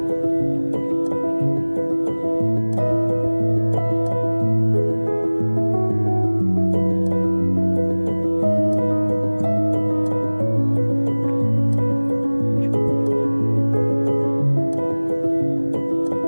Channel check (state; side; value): inverted; both; correlation -1.00